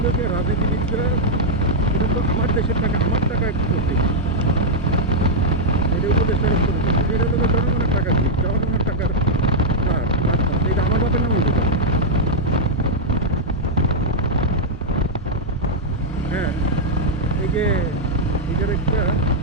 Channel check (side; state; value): both; normal; correlation -0.03